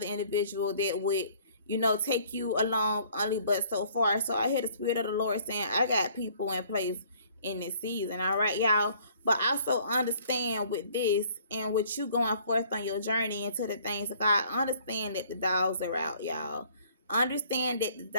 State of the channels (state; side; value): inverted; both; correlation -0.58